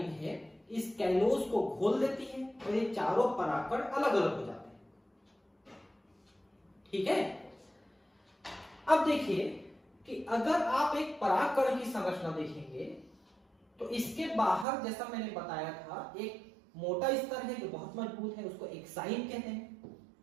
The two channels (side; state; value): left; drops out; at 14.7 s